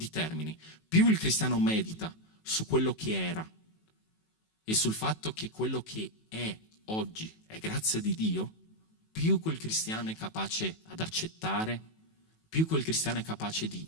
termini. Più il cristiano medita su quello che era e sul fatto che quello che è oggi è grazia di Dio, più quel cristiano è capace ad accettare, più quel cristiano è capace di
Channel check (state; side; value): late; right; 18 ms